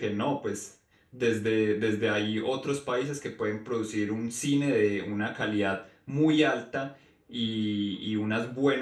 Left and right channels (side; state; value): both; identical; correlation 1.00